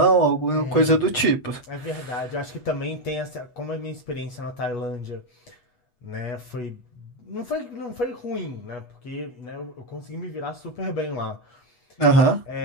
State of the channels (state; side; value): late; right; 8.0 ms